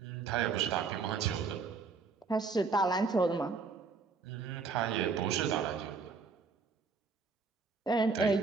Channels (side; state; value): left; quieter; 4.8 dB